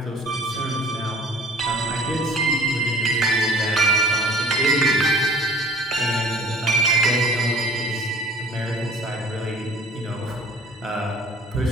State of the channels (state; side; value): normal; both; correlation 0.47